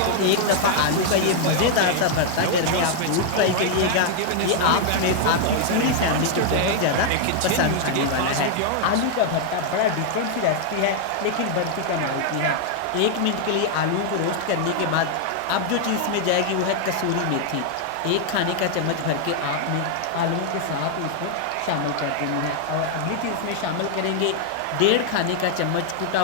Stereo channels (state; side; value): different; both; correlation 0.00